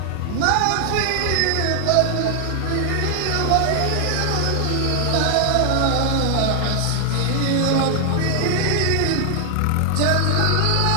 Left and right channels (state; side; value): different; both; correlation -0.01